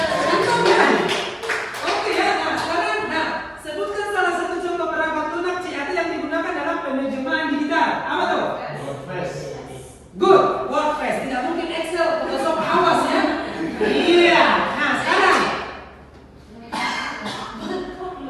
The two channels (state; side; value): identical; both; correlation 1.00